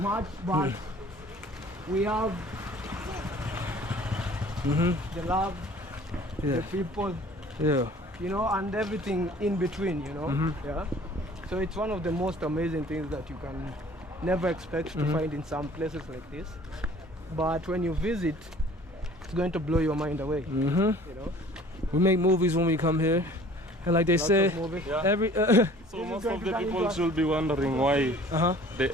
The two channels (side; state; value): both; normal; correlation 0.51